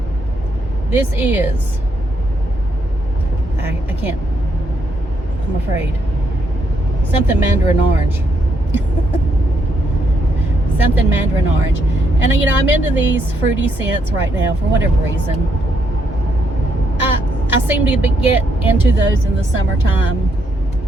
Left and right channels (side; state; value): both; normal; correlation 0.76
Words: This is, I can't, I'm afraid, something mandarin orange. Something mandarin orange. And you know, I'm into these fruity scents right now for whatever reason. I seem to get into those in the summertime.